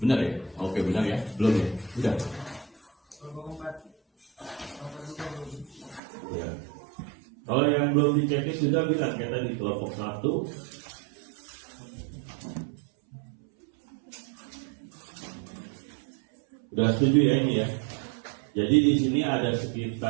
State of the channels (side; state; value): left; drops out; at 6.0 s